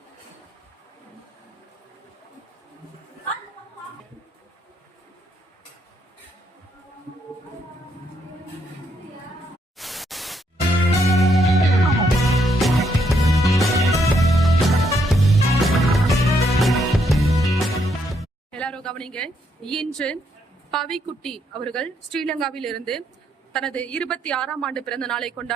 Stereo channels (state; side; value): normal; both; correlation 0.75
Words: எல்லாரும் கவனிங்க. இன்று பவிக்குட்டி அவர்கள் ஸ்ரீலங்காவில் இருந்து தனது 26ஆம் ஆண்டு பிறந்த நாளை